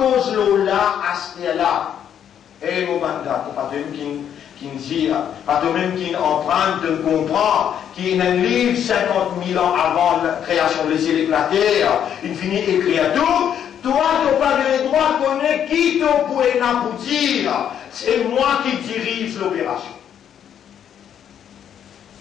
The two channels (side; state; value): right; quieter; 9.2 dB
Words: là, à ce là. Et mon mandat, pas de même qui nous dit, pas de même qui est en train de comprendre, qui est un livre 50 000 ans avant la création des cieux et de la terre, il finit écrire tout. Toi, tu n'as pas le droit de connaître qui te pourrait n'aboutir. C'est moi qui dirige l'opération.